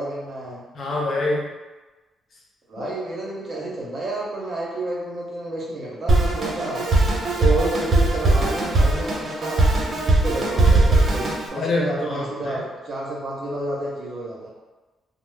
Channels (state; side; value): normal; both; correlation 0.75